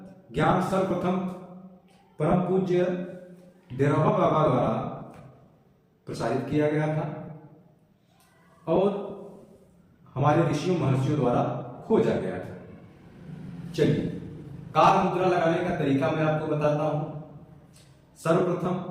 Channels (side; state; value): both; identical; correlation 1.00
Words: ज्ञान सर्वप्रथम परम पूज्य डेराबा बाबा द्वारा प्रसारित किया गया था और हमारे ऋषियों महर्षियों द्वारा खोजा गया था। चलिए, काल मुद्रा लगाने का तरीका मैं आपको बताता हूं। सर्वप्रथम